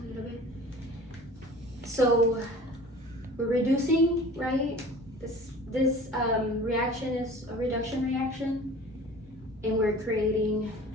little bit. So we're reducing, right? This reaction is a reduction reaction, and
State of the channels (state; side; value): normal; both; correlation 0.43